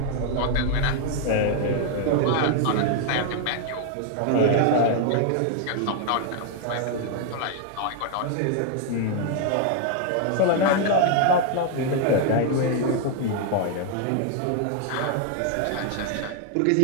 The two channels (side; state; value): both; different; correlation 0.00